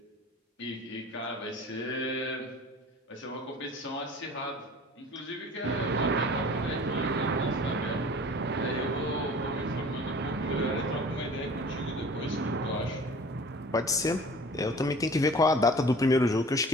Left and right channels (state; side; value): normal; both; correlation 0.45